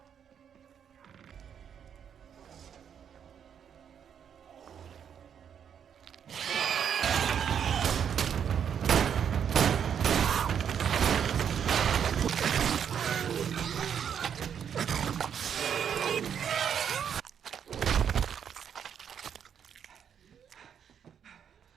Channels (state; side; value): quieter; left; 8.2 dB